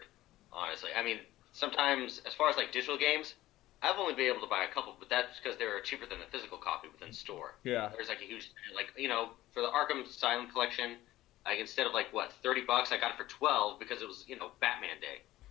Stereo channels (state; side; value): quieter; right; 15.9 dB